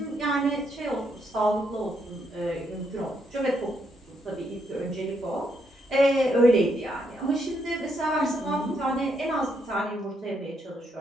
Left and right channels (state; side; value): normal; both; correlation 0.76